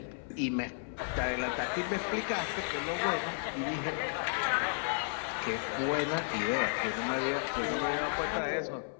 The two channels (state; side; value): silent; right; 56 dB below the other